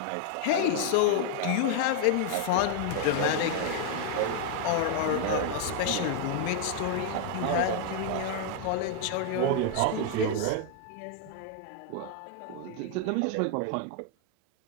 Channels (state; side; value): different; both; correlation 0.00